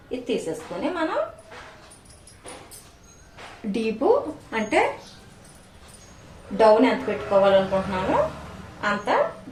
ఇది తీసేసుకుని మనం డీపు అంటే డౌన్ ఎంత పెట్టుకోవాలనుకుంటున్నామో అంత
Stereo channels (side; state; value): both; identical; correlation 1.00